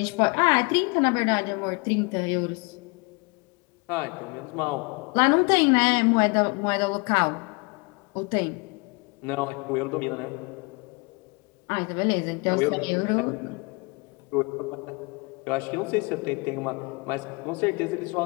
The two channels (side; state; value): right; quieter; 29.5 dB